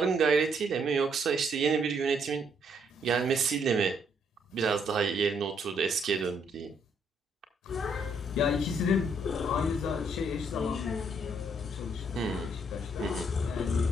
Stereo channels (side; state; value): both; normal; correlation 0.70